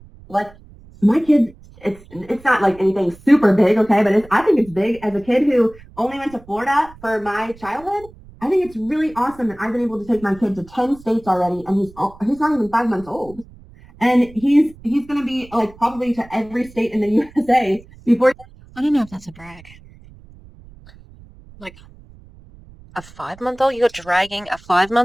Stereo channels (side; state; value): right; noise; rumble, 22 dB below the sound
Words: Like my kid, it's not like anything super big, okay, but I think it's big. As a kid who only went to Florida for my childhood, I think it's really awesome that I've been able to take my kid to 10 states already, and he's not even 5 months old. And he's going to be like probably to every state in the USA before. I don't know if that's a brag. Like a 5-month-old? You're dragging a